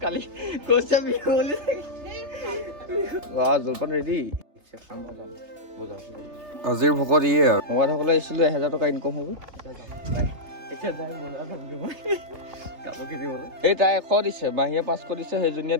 কালি কৈছে বিহু বুলি জলপান ৰেডি আজিৰ ভকত ইয়ে আৰু মমাইসকলে আহিছিলোঁ 1000 টকা ইনকম হ'ব কাপোৰ কিনিবলৈ এই তাই 100 দিছে মাহীয়ে 500 দিছে সেইজনীয়ে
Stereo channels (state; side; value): late; left; 3.3 ms